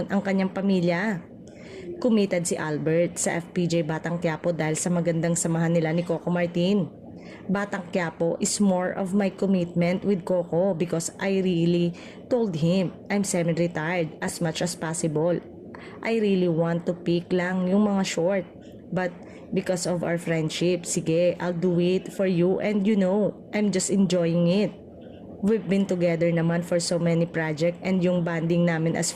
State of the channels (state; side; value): identical; both; correlation 1.00